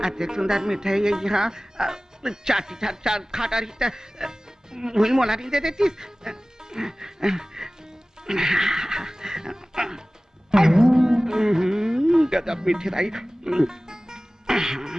अति सुंदर मिठाई है यहाँ चाटी चाट खाटा रही वही मोला नहीं दे देती। गजब मीठी रही।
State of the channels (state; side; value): normal; both; correlation 0.98